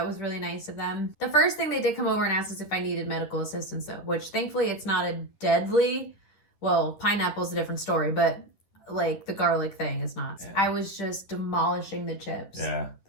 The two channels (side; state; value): right; late; 10 ms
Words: was really nice of them. The first thing they did come over and ask us if I needed medical assistance though, which thankfully it's not a deadly, well, pineapple's a different story, but like the garlic thing is not. Yeah. I was just demolishing the chips. Yeah,